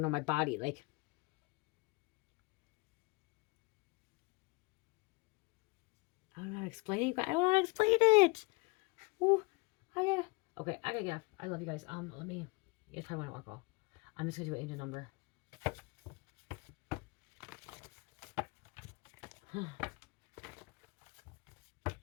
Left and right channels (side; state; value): right; quieter; 26.8 dB